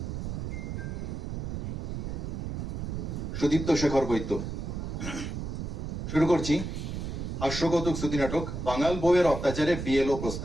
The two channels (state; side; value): noise; right; rumble, 4 dB below the sound